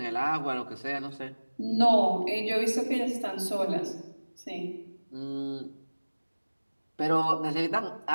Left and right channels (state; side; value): inverted; both; correlation -1.00